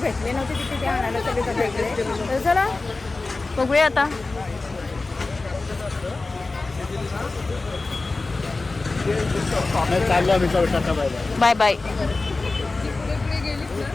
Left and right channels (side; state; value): right; quieter; 3.5 dB